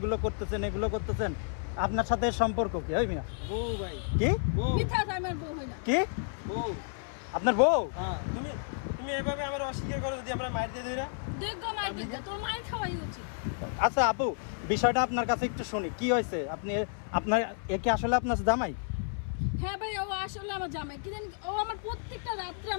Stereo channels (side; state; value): right; silent; 57 dB below the other